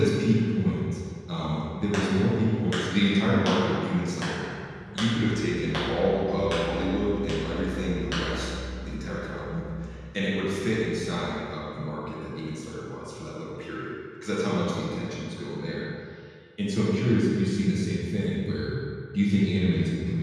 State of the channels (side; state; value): both; identical; correlation 1.00